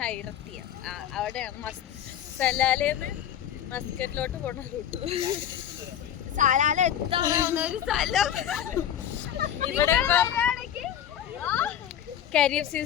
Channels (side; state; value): right; quieter; 10.2 dB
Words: അവിടെയാണ് സലാലേന്ന് മസ്കറ്റിലോട്ട് പോണ റൂട്ട്. സലാല എത്താവുന്ന സ്ഥലം. ഇവിടെ കരിയർ